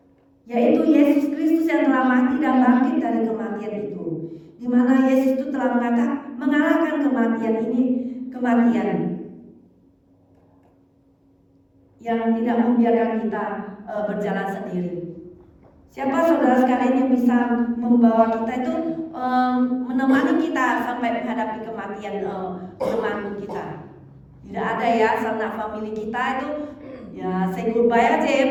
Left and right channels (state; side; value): identical; both; correlation 1.00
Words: Yaitu Yesus Kristus yang telah mati dan bangkit dari kematian itu, di mana Yesus itu telah mengalahkan kematian yang tidak membiarkan kita berjalan sendiri. Siapa saudara sekalian yang bisa membawa kita itu menemani kita sampai menghadapi kematian teman kita? Tidak ada ya, sanak family kita itu ya say goodbye aja ya